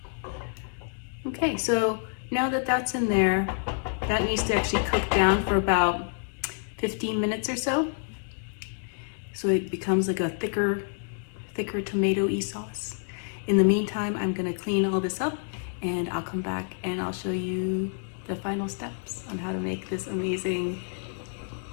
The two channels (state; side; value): silent; right; 59 dB below the other